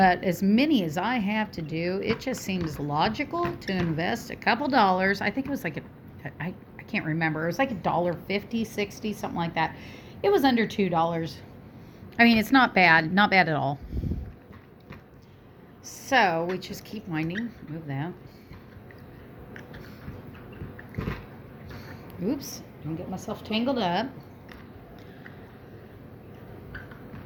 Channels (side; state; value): both; identical; correlation 1.00